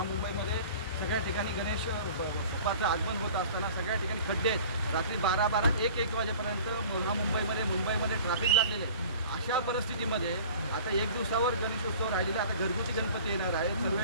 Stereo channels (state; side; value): inverted; both; correlation -0.44